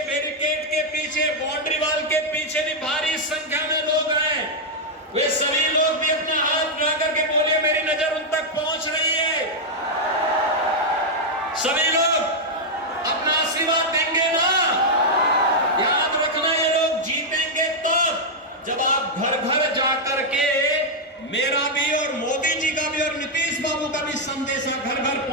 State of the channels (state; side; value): normal; both; correlation -0.02